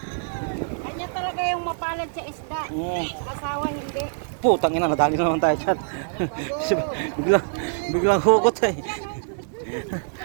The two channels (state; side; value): silent; left; 62 dB below the other